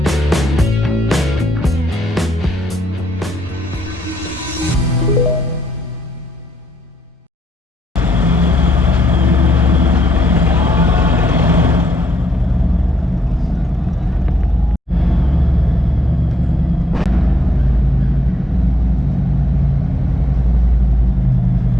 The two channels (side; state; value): both; normal; correlation 0.75